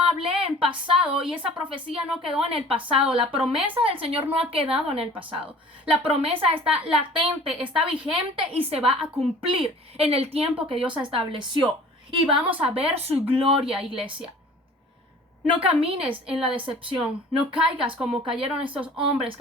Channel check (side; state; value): both; normal; correlation 0.47